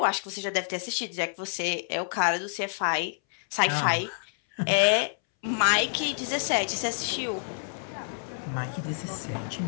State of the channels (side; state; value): right; silent; 59 dB below the other